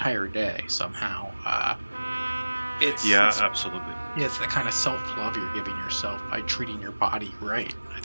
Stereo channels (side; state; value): both; inverted; correlation -1.00